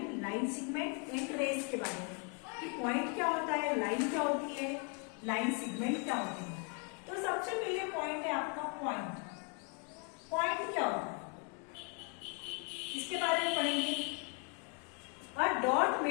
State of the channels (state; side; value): quieter; right; 37.8 dB